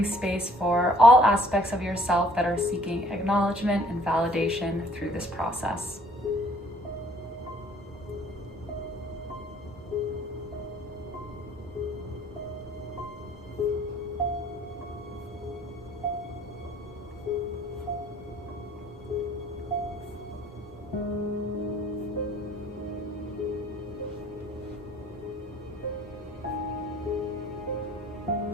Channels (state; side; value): normal; both; correlation 0.57